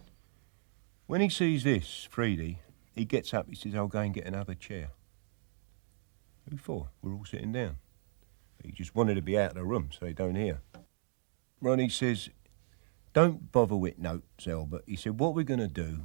When he sees this, Freedy, he gets up, he says, I'll go and get another chair. Who for? We're all sitting down. He just wanted to be out of the room so they don't hear. Ronnie says, don't bother with notes, Albert. He said, what we're going to do,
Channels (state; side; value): silent; left; 54 dB below the other